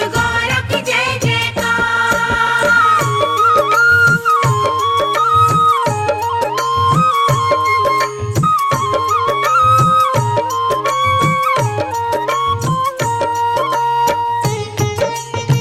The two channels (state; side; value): identical; both; correlation 1.00